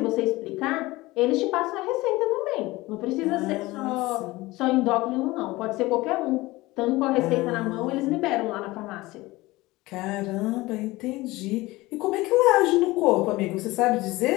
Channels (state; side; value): quieter; right; 20.1 dB